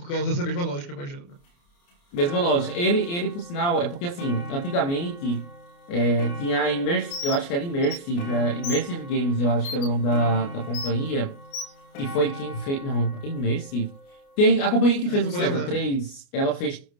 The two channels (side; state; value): right; late; 29 ms